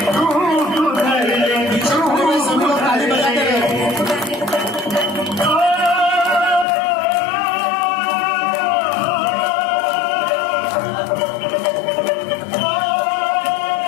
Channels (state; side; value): drops out; right; at 6.7 s